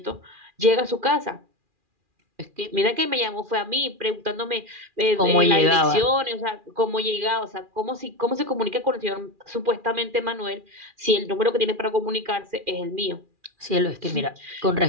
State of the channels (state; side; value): late; left; 2.4 ms